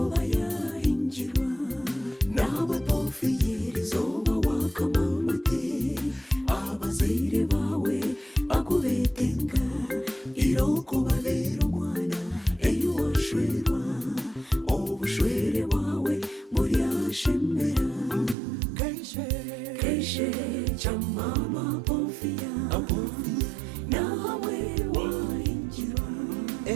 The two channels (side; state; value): left; drops out; at 18.4 s